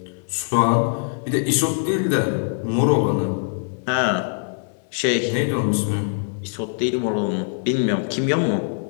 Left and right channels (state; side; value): silent; right; digital silence